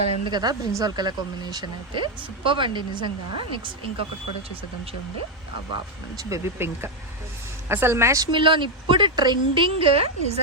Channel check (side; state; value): both; normal; correlation 0.04